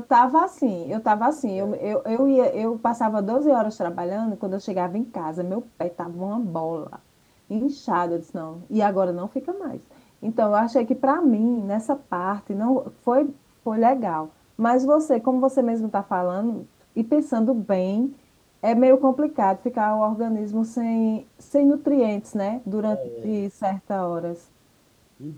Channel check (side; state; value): both; identical; correlation 1.00